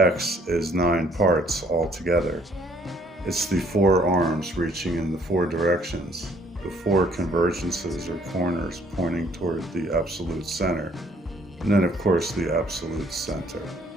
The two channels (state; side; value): normal; both; correlation 0.63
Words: is 9 parts altogether. It's the 4 arms reaching in the 4 directions, the 4 convergences or corners pointing toward the absolute center, and then of course the absolute center.